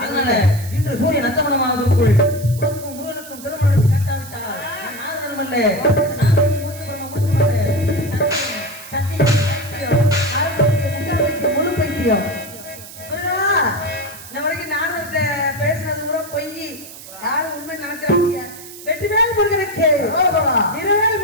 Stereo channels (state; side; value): noise; right; hiss, 16 dB below the sound